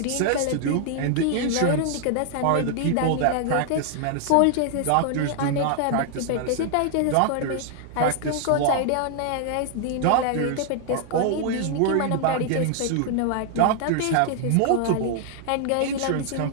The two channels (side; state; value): both; different; correlation 0.00